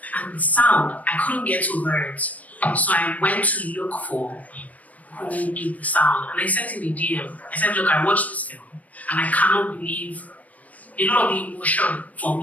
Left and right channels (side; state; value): right; late; 0.071 ms